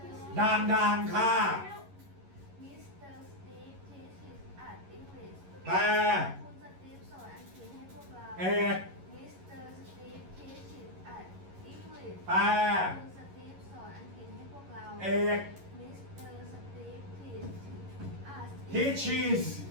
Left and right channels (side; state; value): left; late; 11 ms